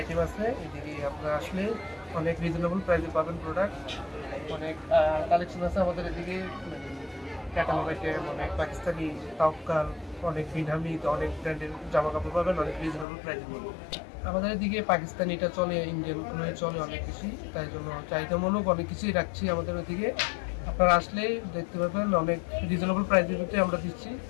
আছে, এদিকে আপনারা আসলে অনেক রিজনেবল প্রাইসে পাবেন প্রোডাক্ট। অনেক কালেকশন আছে আমাদের এদিকে, ক্যাটালগ আইটেম, অনেক পাকিস্তানি তাওকাল, অনেক বিনহামি, অনেক ব্র্যান্ডের জামা কাপড় পাবেন অনেক রিজনেবল প্রাইসে পাবেন। আমাদের এদিকে পাকিস্তানিটা চলে, ইন্ডিয়ানগুলো চলে অনেক বেশি, তাই জন্য চাহিদামূলক অনেক কিছুই রাখছি আমাদের ওইদিকে। আপনারা আসলে দেখতে পাবেন অনেক রিজনেবল প্রাইসের ভিতরে আমরা দিচ্ছি।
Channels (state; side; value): drops out; right; at 13.1 s